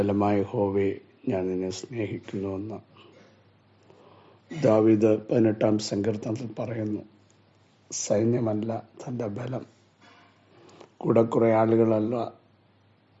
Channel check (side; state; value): both; identical; correlation 1.00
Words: യഹോവേ, ഞാൻ നിന്നെ സ്നേഹിക്കുന്നുവെന്ന് ദാവീദ് 18-ാം സങ്കീർത്തനത്തിൽ പറയുന്നു. സൈന്യമല്ല തൻ്റെ ബലം, കൂടെ കുറേ ആളുകളല്ല,